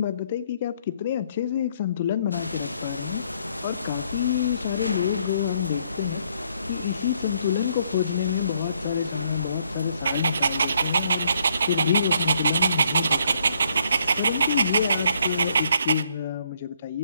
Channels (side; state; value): both; inverted; correlation -0.69